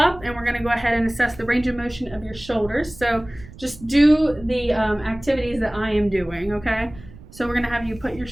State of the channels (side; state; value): right; noise; rumble, 19 dB below the sound